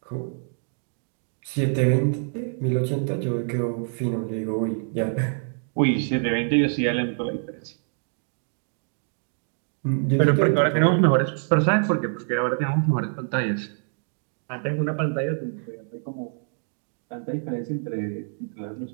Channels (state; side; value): silent; left; 61 dB below the other